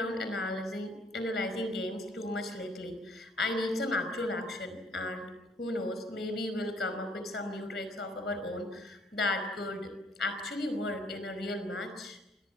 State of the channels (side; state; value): both; normal; correlation 0.62